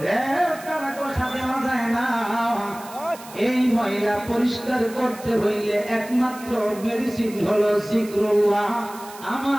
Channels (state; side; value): noise; right; hiss, 18 dB below the sound